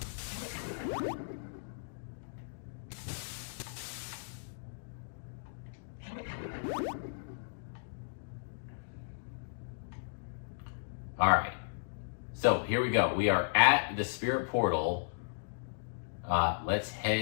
All right. So here we go. We are at the spirit portal. Let's head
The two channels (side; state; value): right; silent; digital silence